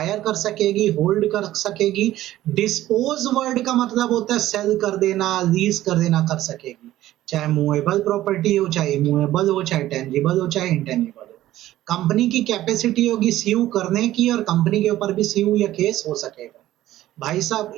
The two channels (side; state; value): left; quieter; 14.5 dB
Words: कर सकेगी, होल्ड कर सकेगी। डिस्पोज वर्ड का मतलब होता है सेल कर देना, लीज कर देना, कर सकेगी। चाहे मूवेबल प्रॉपर्टी हो, चाहे इमूवेबल हो, चाहे टेंजिबल हो, चाहे इंटेंजिबल हो। कंपनी की कैपेसिटी होगी सीव करने की, और कंपनी के ऊपर भी सीव या केस हो सकेगा। भाई साहब,